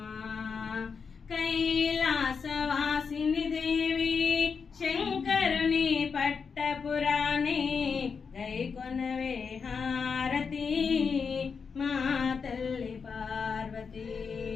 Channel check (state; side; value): quieter; right; 5.7 dB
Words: కైలాసవాసిని దేవి శంకరుని పట్టపురాణి గైకొనవే హారతి మా తల్లి పార్వతి